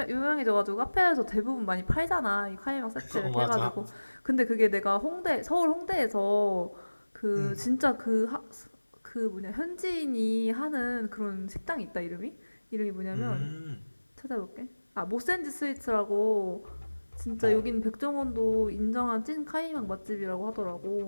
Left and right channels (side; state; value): both; inverted; correlation -1.00